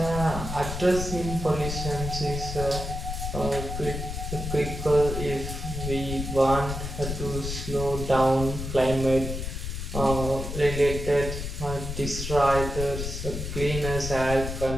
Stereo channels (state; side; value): noise; left; rumble, 5 dB below the sound